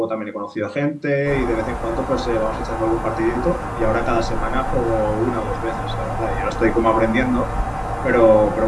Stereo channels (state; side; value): identical; both; correlation 1.00